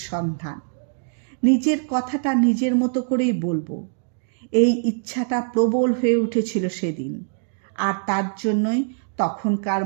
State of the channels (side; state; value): left; silent; digital silence